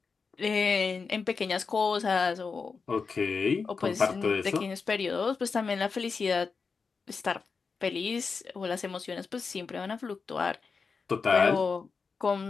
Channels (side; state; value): right; quieter; 5.0 dB